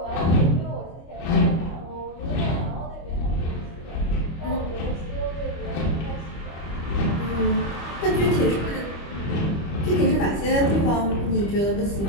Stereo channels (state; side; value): late; right; 25 ms